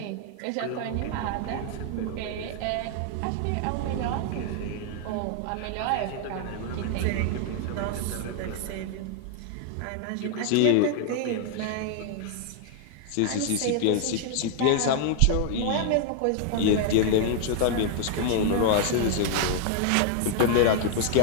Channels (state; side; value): different; both; correlation 0.00